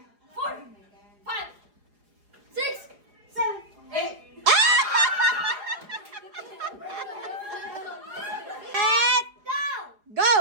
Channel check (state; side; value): late; left; 4.9 ms